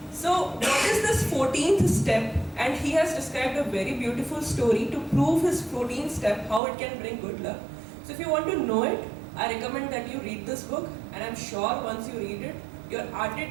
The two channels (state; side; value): drops out; left; at 6.6 s